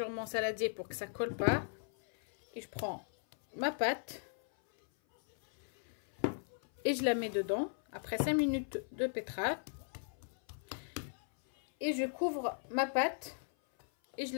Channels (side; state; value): right; silent; 53 dB below the other